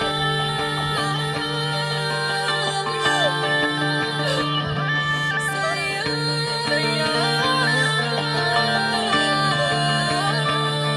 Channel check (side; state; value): both; identical; correlation 1.00